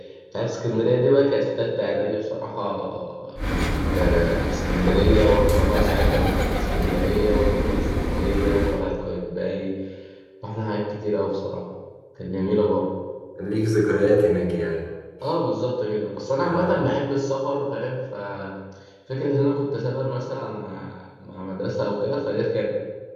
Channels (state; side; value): identical; both; correlation 1.00